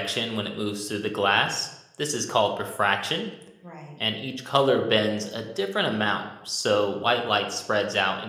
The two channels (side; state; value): both; identical; correlation 1.00